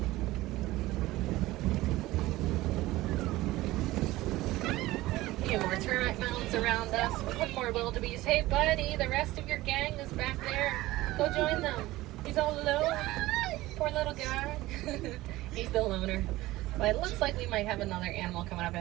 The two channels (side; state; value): left; quieter; 17.8 dB